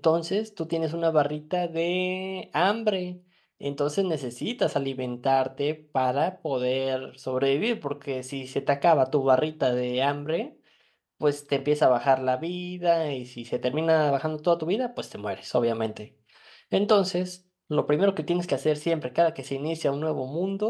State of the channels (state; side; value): identical; both; correlation 1.00